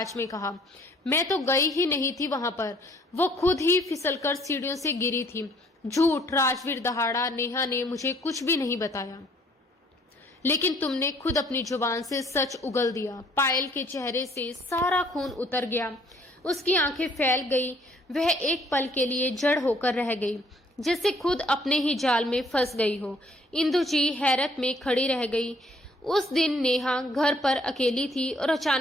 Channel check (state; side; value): normal; both; correlation 0.61